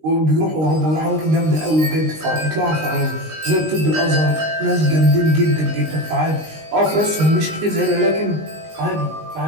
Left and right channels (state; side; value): late; left; 19 ms